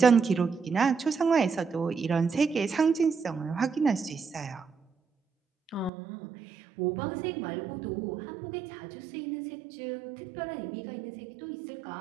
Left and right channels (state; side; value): drops out; left; at 5.9 s